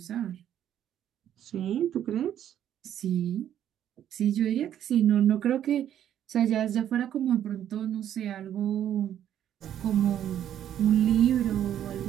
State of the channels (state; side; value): quieter; left; 10.5 dB